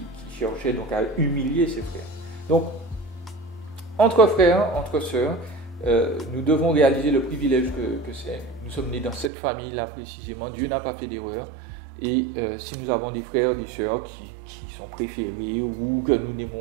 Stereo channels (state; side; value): drops out; left; at 9.3 s